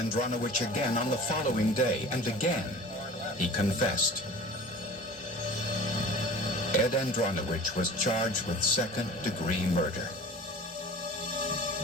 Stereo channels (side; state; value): both; normal; correlation 0.40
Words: again on the following day, and again he confessed. Ed Andronowich was charged with second-degree murder.